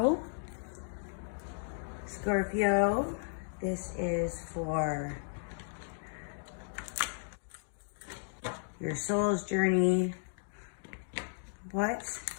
Scorpio, this is for your soul's journey. What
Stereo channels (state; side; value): silent; right; digital silence